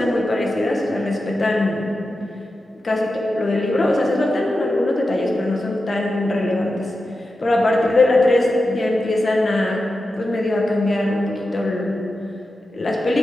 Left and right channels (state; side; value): normal; both; correlation 0.91